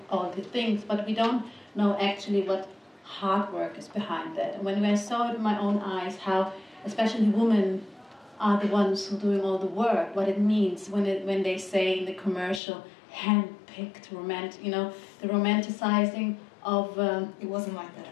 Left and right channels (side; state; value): right; drops out; at 12.6 s